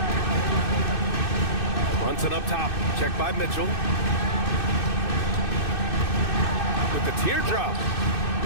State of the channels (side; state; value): right; late; 2.6 ms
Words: Brunson up top. Checked by Mitchell. With the teardrop.